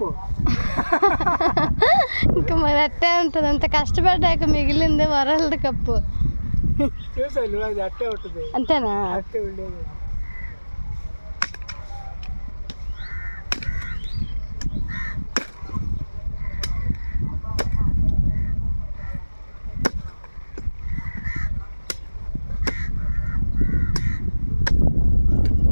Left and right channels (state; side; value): inverted; both; correlation -1.00